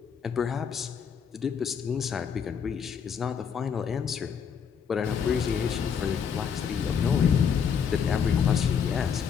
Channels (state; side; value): quieter; right; 7.1 dB